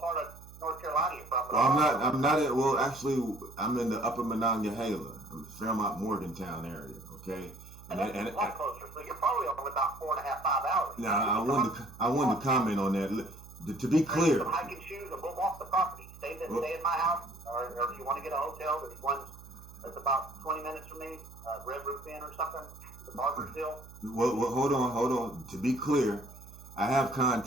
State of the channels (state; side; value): noise; right; hum, 18 dB below the sound